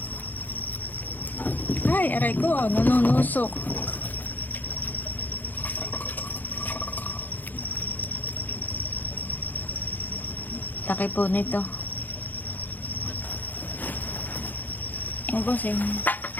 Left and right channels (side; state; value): right; late; 0.085 ms